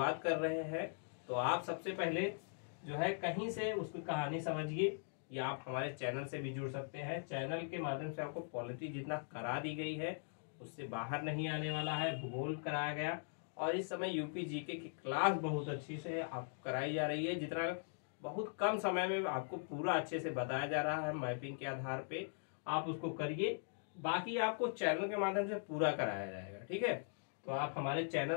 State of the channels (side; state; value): right; silent; digital silence